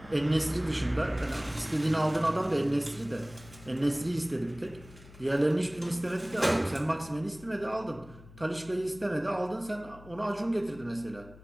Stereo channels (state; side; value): noise; left; hum, 20 dB below the sound